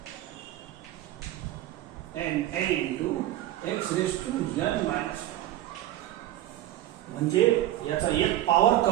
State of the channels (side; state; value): left; quieter; 13.9 dB